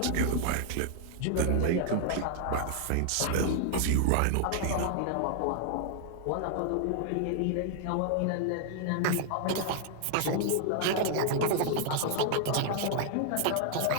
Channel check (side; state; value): both; different; correlation 0.00